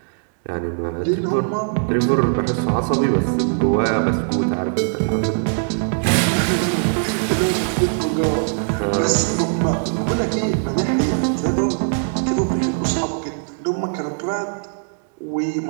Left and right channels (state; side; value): silent; left; digital silence